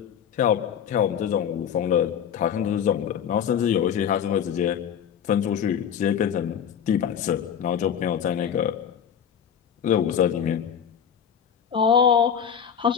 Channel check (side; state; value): right; quieter; 8.3 dB